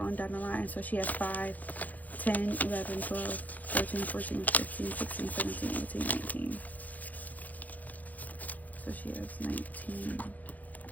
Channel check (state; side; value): late; right; 0.080 ms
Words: down the line. So she has 5. 10, 11, 12, 13, 14, 15, 16, 17, 18, 19. So she has 19.